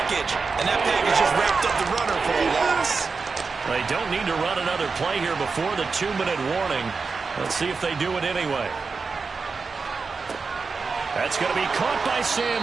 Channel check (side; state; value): left; quieter; 4.7 dB